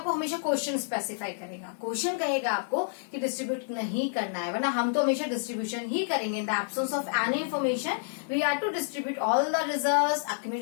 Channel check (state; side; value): silent; right; digital silence